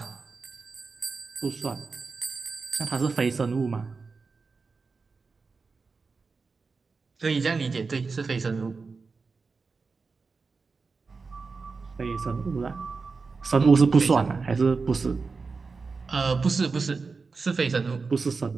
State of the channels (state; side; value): quieter; left; 4.5 dB